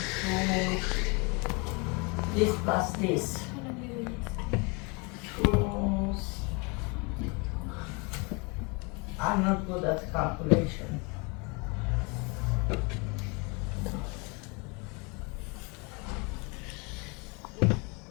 This plus this. I'm not good at calculation.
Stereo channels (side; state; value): right; quieter; 30.4 dB